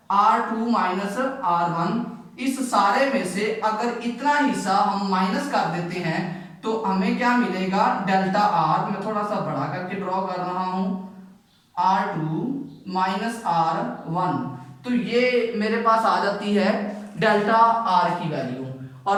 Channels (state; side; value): identical; both; correlation 1.00